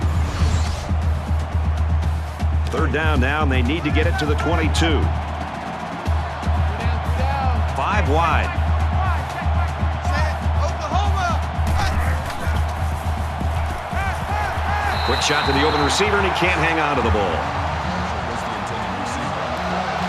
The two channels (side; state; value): both; identical; correlation 1.00